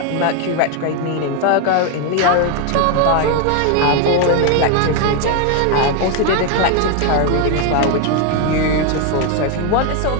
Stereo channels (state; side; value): different; both; correlation 0.01